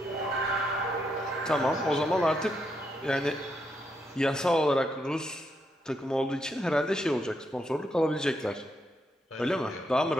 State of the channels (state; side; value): normal; both; correlation 0.79